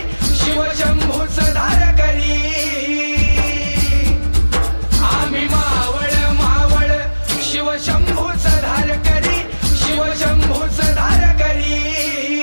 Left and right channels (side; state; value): both; inverted; correlation -1.00